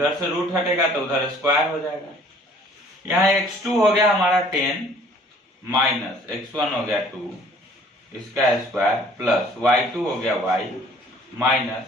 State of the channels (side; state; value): both; normal; correlation 0.55